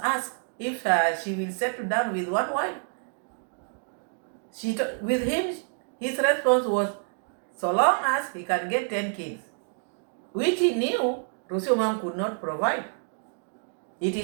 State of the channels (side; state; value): left; silent; 59 dB below the other